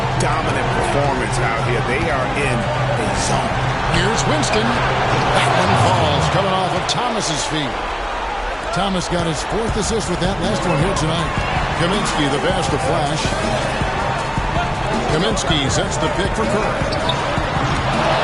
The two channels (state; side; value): identical; both; correlation 1.00